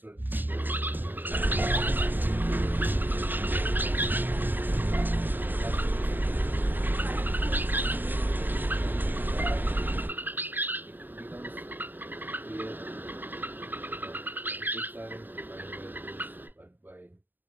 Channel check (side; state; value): left; late; 0.091 ms